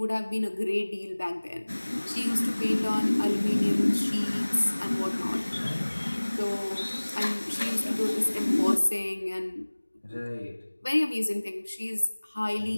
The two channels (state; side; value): inverted; both; correlation -1.00